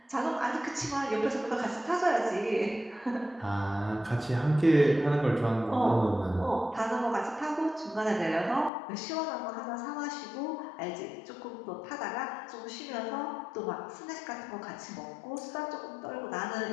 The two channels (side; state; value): right; drops out; at 8.7 s